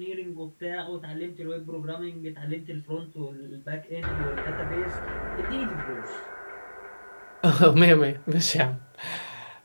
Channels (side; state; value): both; inverted; correlation -1.00